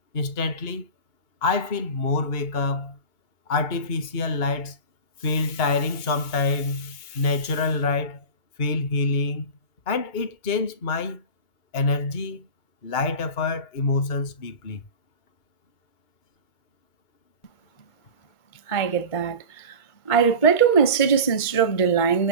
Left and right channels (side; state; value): right; late; 2.2 ms